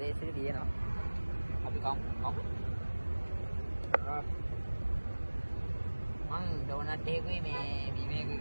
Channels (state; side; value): inverted; both; correlation -1.00